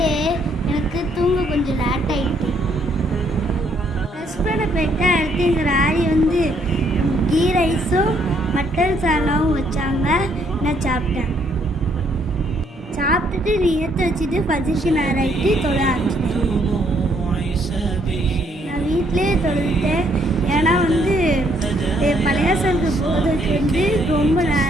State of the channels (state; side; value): normal; both; correlation 0.69